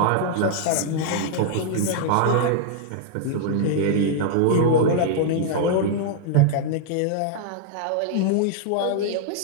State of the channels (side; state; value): both; different; correlation -0.01